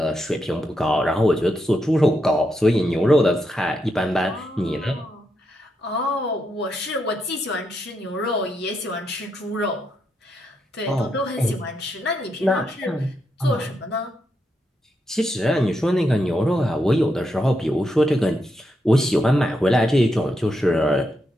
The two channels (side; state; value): both; normal; correlation 0.82